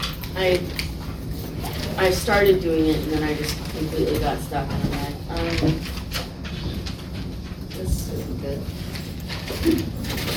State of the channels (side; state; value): both; identical; correlation 1.00